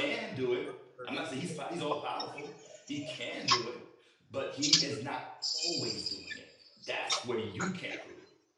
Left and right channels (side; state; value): both; identical; correlation 1.00